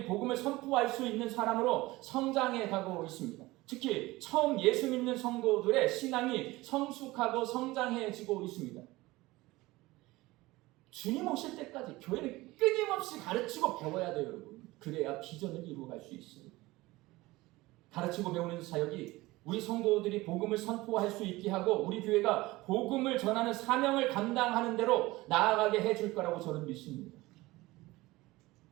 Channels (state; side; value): quieter; left; 19.9 dB